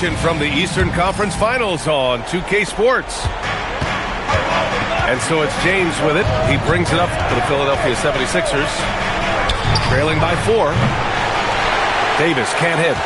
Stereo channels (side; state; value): both; identical; correlation 1.00